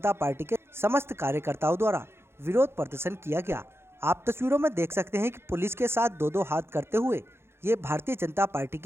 पार्टी के समस्त कार्यकर्ताओं द्वारा विरोध प्रदर्शन किया गया। आप तस्वीरों में देख सकते हैं कि पुलिस के साथ दो हाथ करते हुए ये भारतीय जनता पार्टी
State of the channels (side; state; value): left; late; 0.12 ms